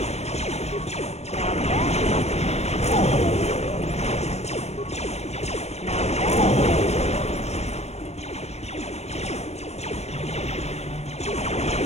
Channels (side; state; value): right; late; 0.31 ms